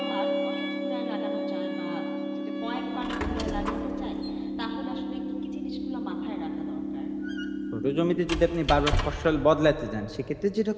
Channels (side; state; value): both; identical; correlation 1.00